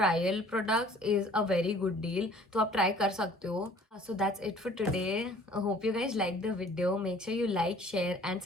products is a very good deal. तो आप try कर सकते हो. So that's it for today. I hope you guys liked the video. Make sure you like, share and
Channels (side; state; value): both; normal; correlation 0.52